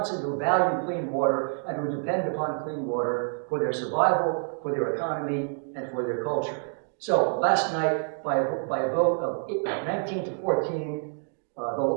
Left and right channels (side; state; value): left; silent; 59 dB below the other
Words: who value clean water and who depend upon clean water for their survival, for their economy, and for their culture. So last night, by a vote of 19 to 14,